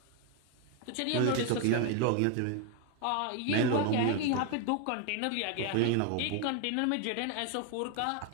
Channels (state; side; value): different; both; correlation 0.01